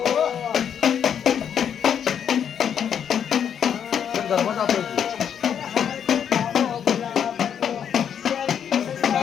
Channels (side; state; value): right; quieter; 8.4 dB